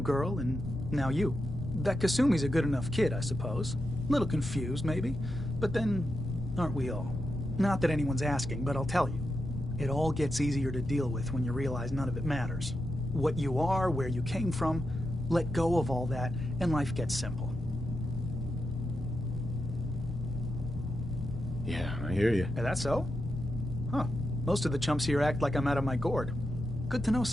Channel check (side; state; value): both; normal; correlation 0.86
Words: and now you. That Kasumi's a good enough kid, I suppose. Little confused, maybe. But then, aren't we all? Not that anyone's asking, but I'll tell you. It all gets easier to deal with when you realize none of it matters. What you are, where you came from, let go of all that, and life gets simple. Yeah, I hear you. Is that so? Huh. Most of the chumps here act like I'm out of my gourd. Good to know